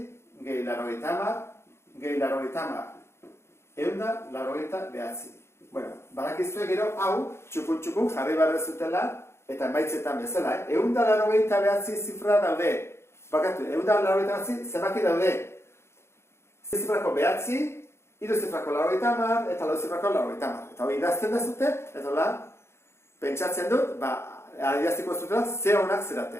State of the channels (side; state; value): right; late; 0.12 ms